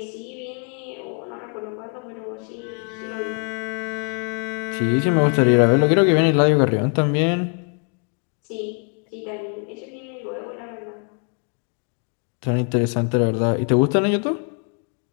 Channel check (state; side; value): quieter; right; 38.5 dB